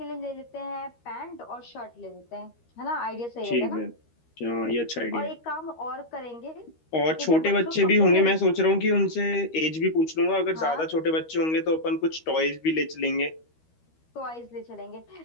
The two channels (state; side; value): late; right; 13 ms